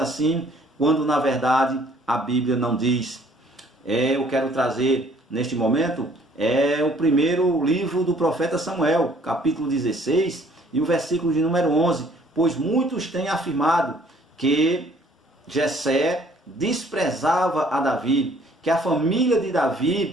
quando na verdade a Bíblia não diz. Eu quero trazer neste momento o primeiro livro do profeta Samuel, capítulo 16, e o versículo de número 11, pois muitos têm afirmado que Jessé desprezava a Davi, que a família de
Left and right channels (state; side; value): normal; both; correlation 0.59